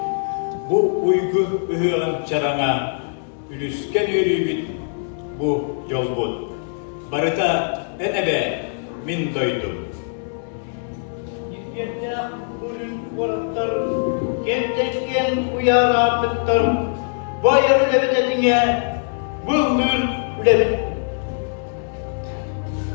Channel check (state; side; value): silent; right; digital silence